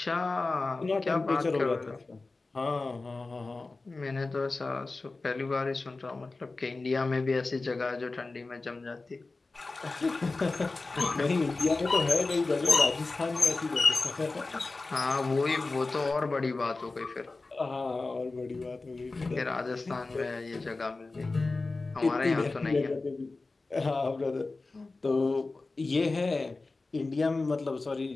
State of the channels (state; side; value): quieter; right; 3.5 dB